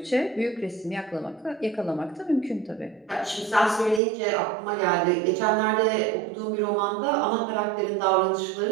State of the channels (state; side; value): drops out; left; at 4.0 s